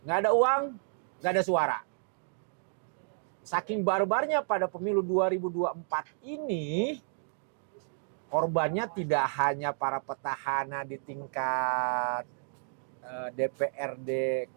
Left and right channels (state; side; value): silent; left; digital silence